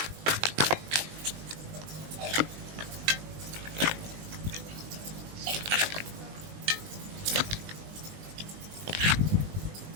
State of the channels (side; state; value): left; late; 20 ms